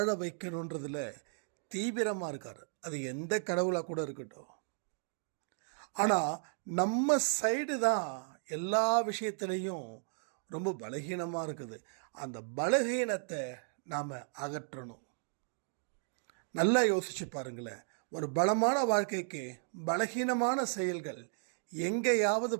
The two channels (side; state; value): left; silent; 55 dB below the other